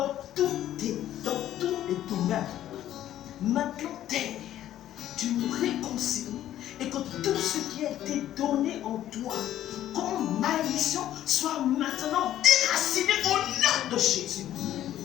tous les domaines. Maintenant, terre, tu nous réconcilies et que tout ce qui a été donné en toi comme malédiction soit maintenant déraciné au nom de Jésus.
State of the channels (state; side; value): quieter; right; 12.4 dB